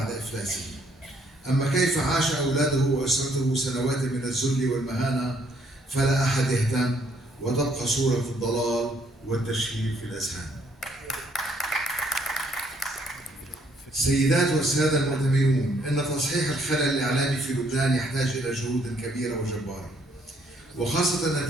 إفلاسه. أما كيف عاش أولاده وأسرته سنوات من الذل والمهانة فلا أحد يهتم، وتبقى صورة الضلال والتشهير في الأذهان. سيدات والسادة المؤتمرون، إن تصحيح الخلل الإعلامي في لبنان يحتاج إلى جهود كبيرة وجبارة، وخاصة أن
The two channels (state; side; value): normal; both; correlation 0.67